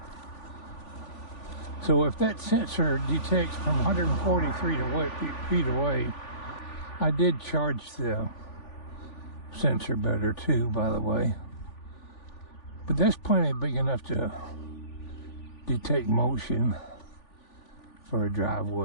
So if that sensor detects from 143 feet away, I did charge the sensor better too, by the way. But that's plenty big enough to detect motion for a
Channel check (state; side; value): late; right; 3.5 ms